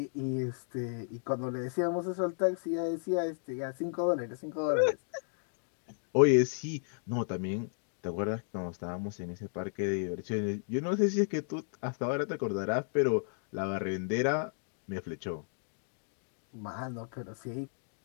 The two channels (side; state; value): right; silent; digital silence